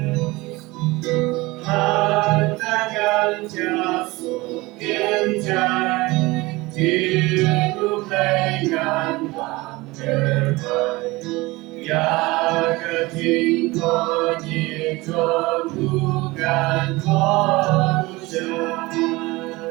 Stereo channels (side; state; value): left; quieter; 21.8 dB